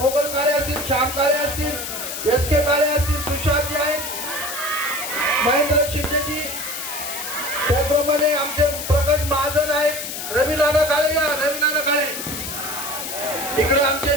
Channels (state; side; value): noise; left; hiss, 6 dB below the sound